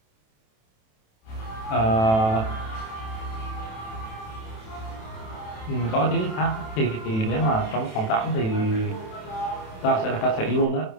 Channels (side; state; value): right; late; 27 ms